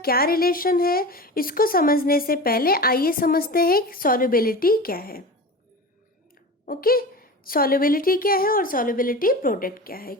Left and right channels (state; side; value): normal; both; correlation 0.31